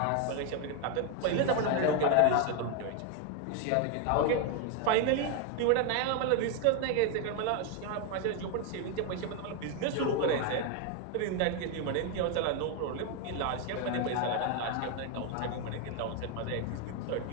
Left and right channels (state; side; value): different; both; correlation 0.01